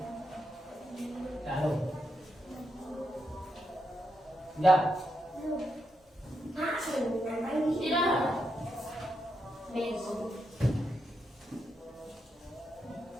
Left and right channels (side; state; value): both; normal; correlation 0.83